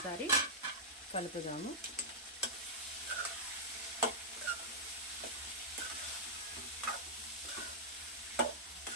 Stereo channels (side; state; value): both; normal; correlation -0.10